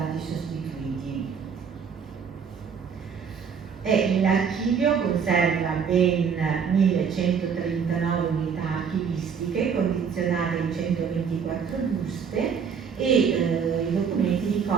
sostituiti. L'archivio conserva ben 1139 unità archivistiche condizionate in 124 buste e i documenti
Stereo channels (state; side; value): quieter; left; 6.6 dB